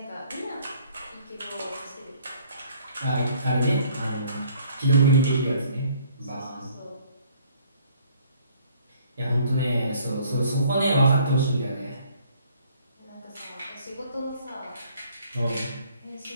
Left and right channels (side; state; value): both; inverted; correlation -0.60